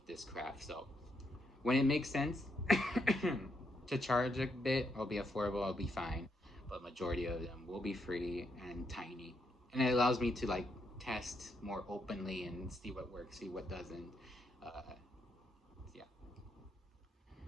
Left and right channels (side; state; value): both; normal; correlation 0.78